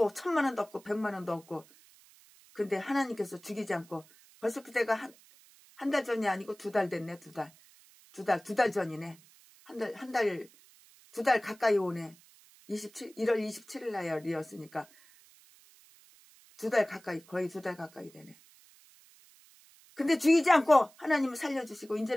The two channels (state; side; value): noise; right; hiss, 26 dB below the sound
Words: 1,000만 원도 없고 100만 원도 없고 근데 하나님께서 죽이지 않고 벌써 그때가 한 달 전이 아니고 2달 됐네. 2달 전이네. 두 달 가까이 오네. 1월 27일 날이었으니까 2달 가까이 거의 2달 가까이 되네. 근데 죽이지 않고 하나님을 살려주시고